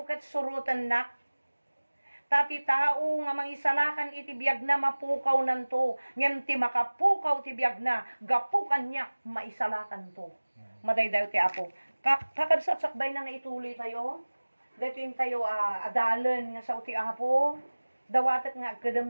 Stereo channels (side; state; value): both; inverted; correlation -1.00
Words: ket surutan na. Tati tao nga mangisalakan iti biyag na mapukaw nanto. Ngem ti makapukaw ti biyag na gapukan niya maisalakan to. Madaydayo ti Apo. Kakabsat sakbay na nga ituloy tayo. Datin tayo adalan nga sa ti Apo. Dawatat nga